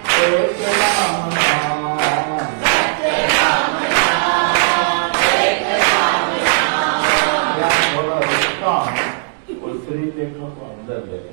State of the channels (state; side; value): silent; left; digital silence